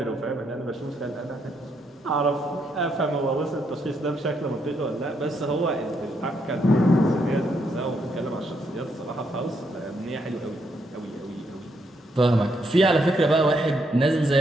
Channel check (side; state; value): both; normal; correlation 0.76